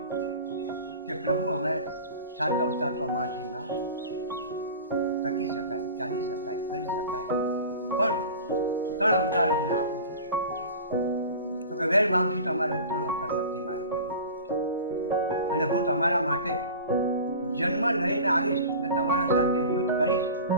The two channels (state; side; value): inverted; both; correlation -0.37